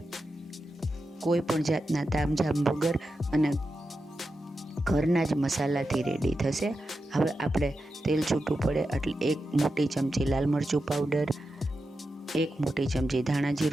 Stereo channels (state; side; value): normal; both; correlation 0.90